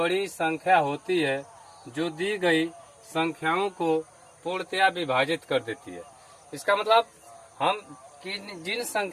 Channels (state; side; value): identical; both; correlation 1.00